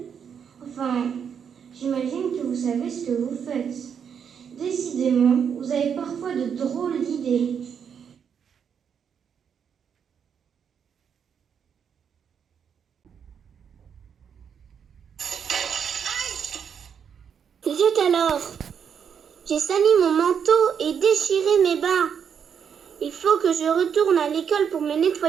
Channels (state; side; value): quieter; left; 7.5 dB